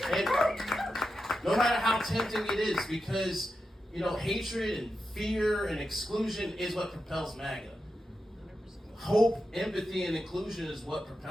And no matter how tempting it is, because, hatred and fear and exclusion is what propels MAGA. Hope, empathy, and inclusion is what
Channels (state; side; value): normal; both; correlation 0.88